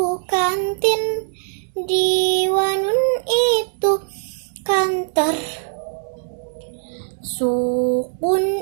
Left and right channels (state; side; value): silent; left; digital silence